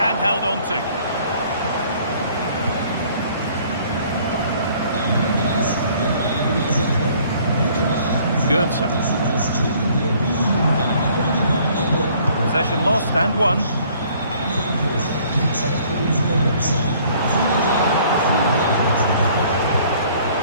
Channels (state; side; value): inverted; both; correlation -0.58